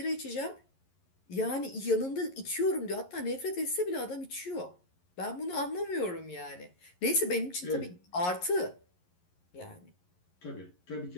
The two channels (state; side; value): late; right; 11 ms